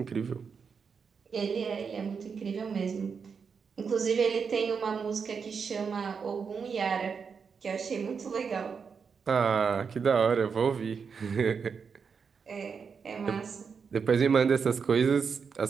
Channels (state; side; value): quieter; left; 5.9 dB